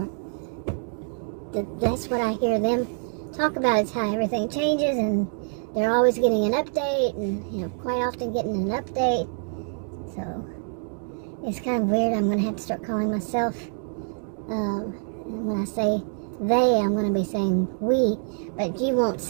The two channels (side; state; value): left; silent; 61 dB below the other